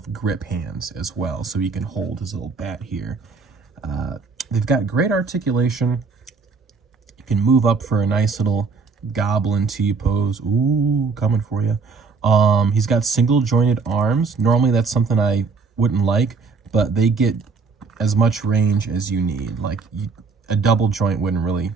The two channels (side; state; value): left; quieter; 4.7 dB